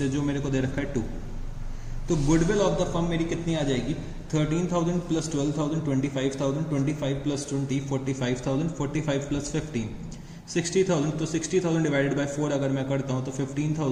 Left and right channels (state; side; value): identical; both; correlation 1.00